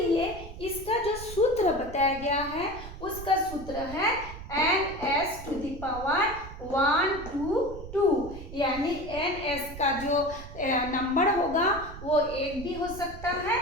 इसका जो सूत्र बताया गया है उसका सूत्र है NS⁻122, यानी NS का जो नंबर होगा वो 1 भी हो सकता है,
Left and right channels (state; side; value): noise; right; rumble, 12 dB below the sound